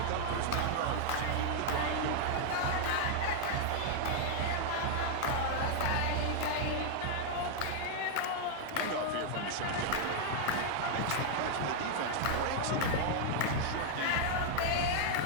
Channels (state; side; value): different; both; correlation 0.00